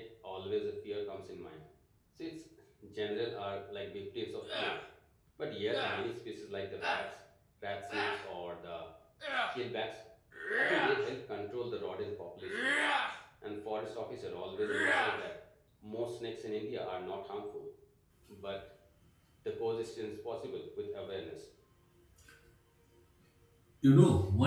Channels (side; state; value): both; identical; correlation 1.00